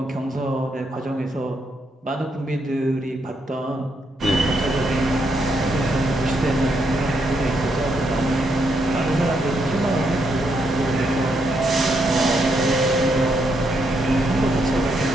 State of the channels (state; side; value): normal; both; correlation 0.77